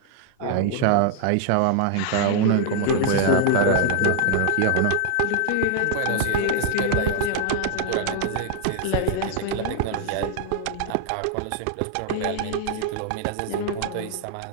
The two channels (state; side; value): different; both; correlation 0.00